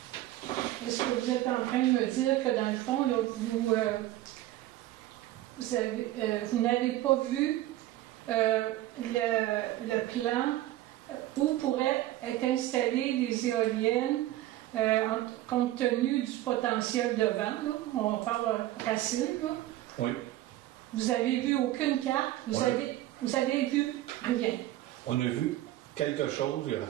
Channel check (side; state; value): left; quieter; 15.1 dB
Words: Est-ce que vous êtes en train de me dire que dans le fond, là, vous n'avez pas vu le plan où pourraient être installées des éoliennes compte tenu du potentiel de vent, là? On parle Racine, là. Oui. Vous n'avez vu aucune carte, vous avez vu rien. On a vu quelque chose, il n'y a